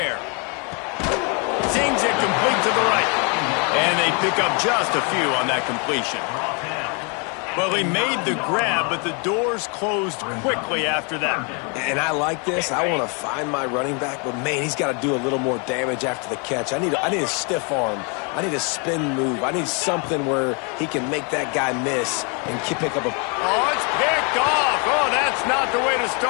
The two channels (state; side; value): quieter; right; 34.6 dB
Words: air. Zings it complete to the right. And they pick up just a few on that completion. Well, he made the grab, but the doors closed quickly after that. And I like this. I want to find my running back, but, man, he's got to do a little more damage after the catch. I need a stiff arm. I need a spin move. I need something where he can make that guy miss and pick up a... Oh, it's picked off. Oh, that's not the way to